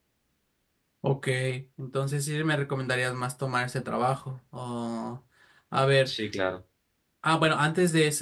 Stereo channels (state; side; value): identical; both; correlation 1.00